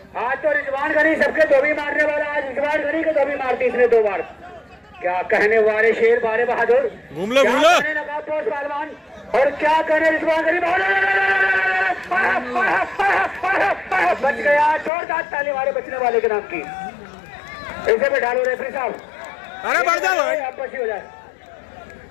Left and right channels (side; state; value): right; drops out; at 14.9 s